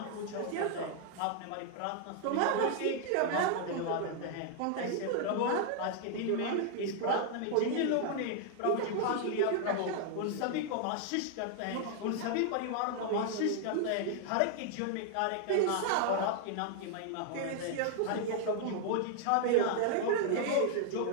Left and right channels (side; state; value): both; different; correlation 0.00